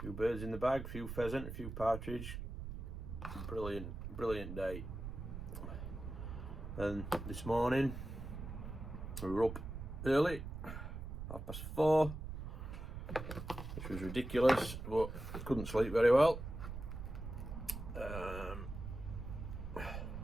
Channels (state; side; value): noise; right; rumble, 7 dB below the sound